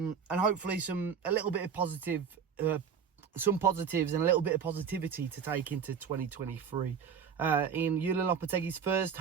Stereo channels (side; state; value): left; quieter; 7.0 dB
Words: hopefully some positives and a little bit of positivity to take into 2023. In Julian Lopetegui's first